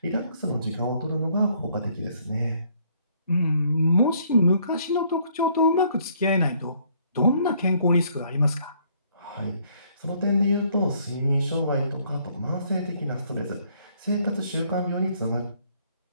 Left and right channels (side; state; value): both; inverted; correlation -0.65